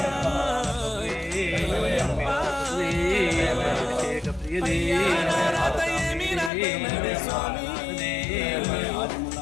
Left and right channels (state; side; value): drops out; right; at 6.5 s